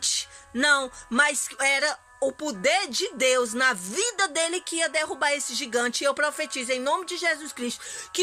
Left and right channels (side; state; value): both; identical; correlation 1.00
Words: Não, mas era o poder de Deus na vida dele que ia derrubar esse gigante. E eu profetizo em nome de Jesus Cristo